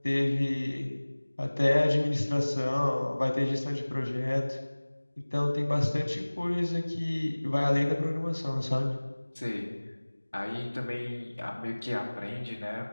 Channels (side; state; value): both; inverted; correlation -1.00